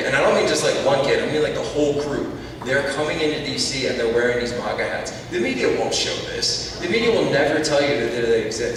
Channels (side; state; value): both; identical; correlation 1.00